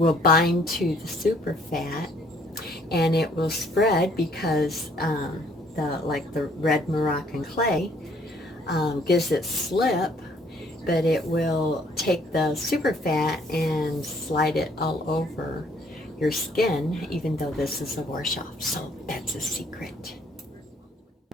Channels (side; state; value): both; normal; correlation 0.63